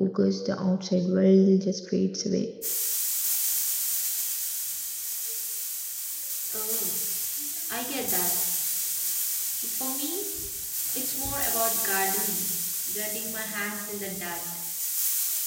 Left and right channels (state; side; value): identical; both; correlation 1.00